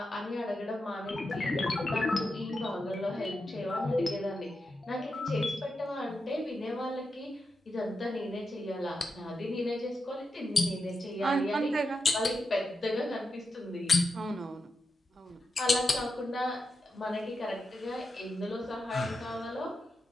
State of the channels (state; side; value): normal; both; correlation 0.88